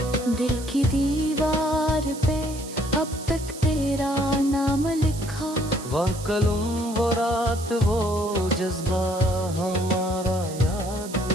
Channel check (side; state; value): right; noise; hiss, 14 dB below the sound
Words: दिल की दीवार पे अब तक तेरा नाम लिखा, वो कलम वो रात वो जज्बा हमारा याद